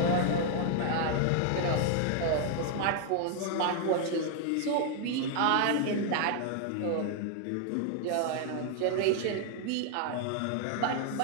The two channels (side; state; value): both; different; correlation 0.00